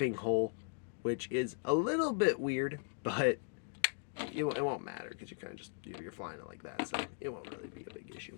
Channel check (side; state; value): right; silent; digital silence